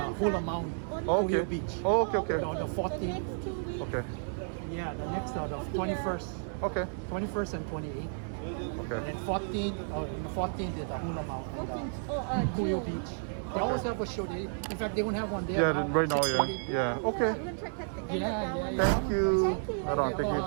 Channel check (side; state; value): left; silent; digital silence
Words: Hula Saturday? Mountain. Only Oh, on okay. Ohio Beach. Oh, okay, okay. On the The 14th. next 2 weeks? Okay. Yeah, the next the 21st. Okay. 21st and 28th. Okay. And then 14th, the 14th is the Hula Mountain. 14th. Ohio June. Beach. They always have a show. In fact, they won't have one there. Yeah, right now, yeah. 6:30. Yeah. Okay. We're gonna try to cut the end of Yeah, that yeah, one. yeah. Thank you. Thank you. Right on. Thank you.